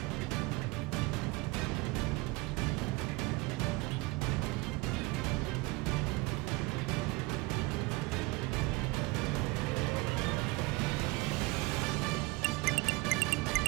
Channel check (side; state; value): left; quieter; 23.0 dB